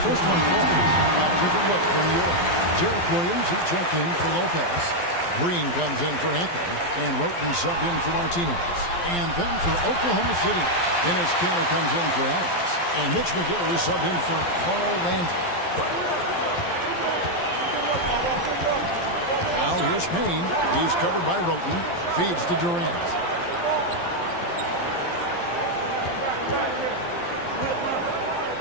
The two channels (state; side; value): late; right; 12 ms